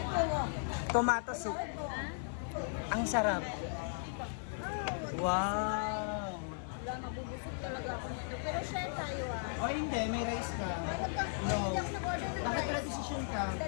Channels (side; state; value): right; silent; 53 dB below the other